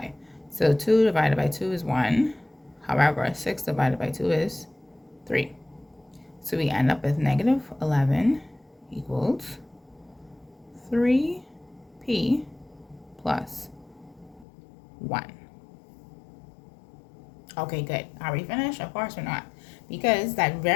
So 2 divided by 2 is 1. However, 6 divided by 2 is 3. So we end up with negative 11 equals 3p plus 1. Okay, good. Are we finished? Of course we're not. Because that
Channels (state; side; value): drops out; right; at 14.5 s